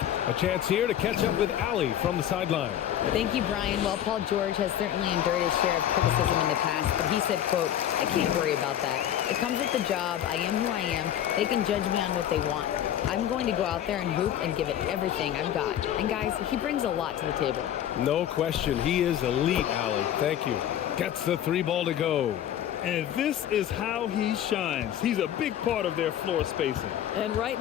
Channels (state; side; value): quieter; right; 10.9 dB